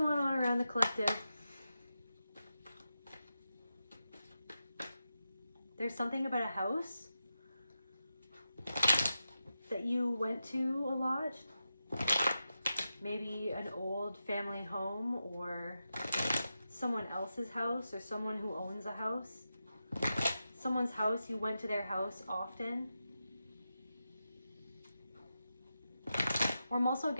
on around the collective? There's something about a house that you went to a lot. Maybe an old family home or someone else's house or someone who owns a house. Someone's house, you went to their house often. Or I'm also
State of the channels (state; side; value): inverted; both; correlation -0.89